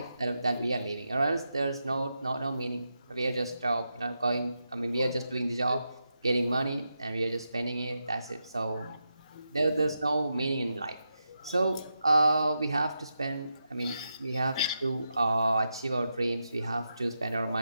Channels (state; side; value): inverted; both; correlation -0.86